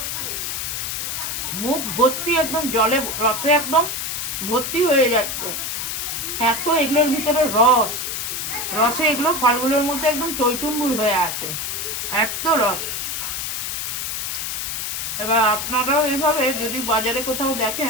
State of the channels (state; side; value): noise; left; hiss, 3 dB below the sound